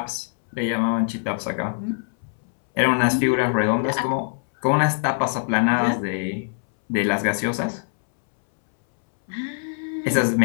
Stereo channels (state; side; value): silent; right; 63 dB below the other